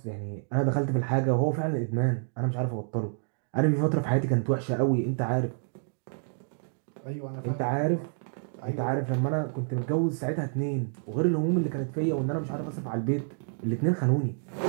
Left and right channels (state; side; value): silent; left; digital silence